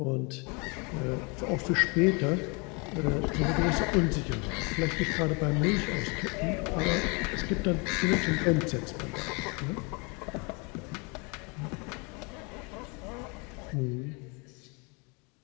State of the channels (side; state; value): right; quieter; 31.2 dB